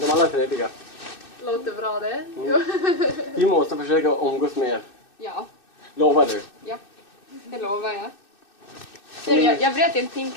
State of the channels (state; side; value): late; right; 2.6 ms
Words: alla är trevliga. Låter bra det. Mm. Vi måste försöka umgås mer. Ja. Lovar du? Ja, det lovar jag. Jag bröt en